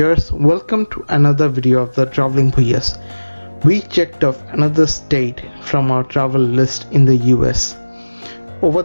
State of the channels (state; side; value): inverted; both; correlation -1.00